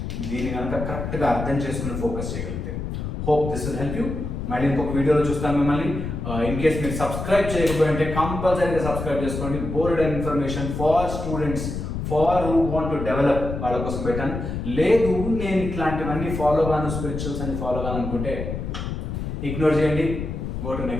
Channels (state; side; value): noise; left; rumble, 5 dB below the sound